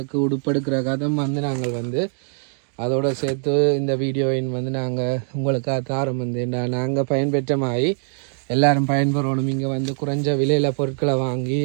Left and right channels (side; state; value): left; silent; 64 dB below the other